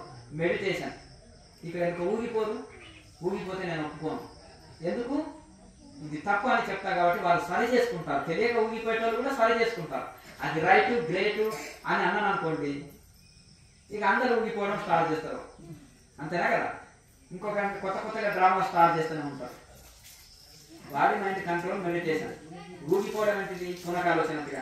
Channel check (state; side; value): identical; both; correlation 1.00